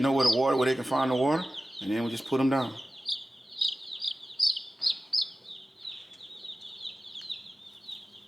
where they can find the water, and then we just put them down.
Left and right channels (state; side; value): normal; both; correlation 0.96